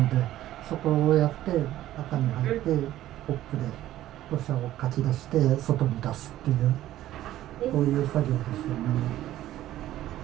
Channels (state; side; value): quieter; left; 13.8 dB